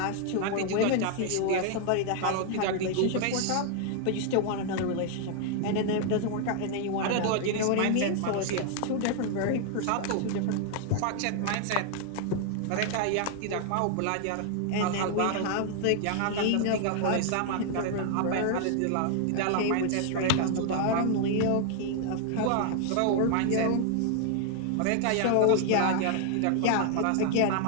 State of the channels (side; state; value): both; different; correlation 0.00